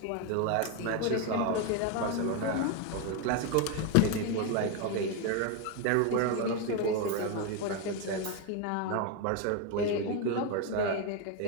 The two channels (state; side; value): different; both; correlation 0.02